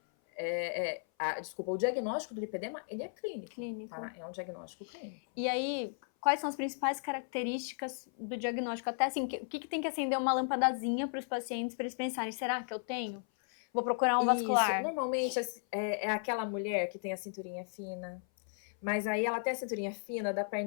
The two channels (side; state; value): right; silent; 54 dB below the other